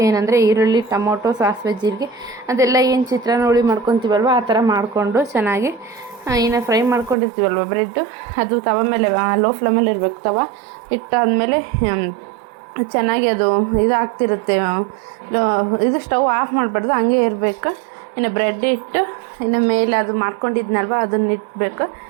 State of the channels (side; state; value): left; drops out; at 7.2 s